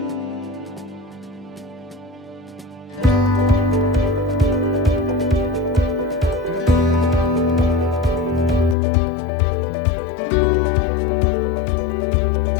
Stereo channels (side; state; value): right; drops out; at 8.8 s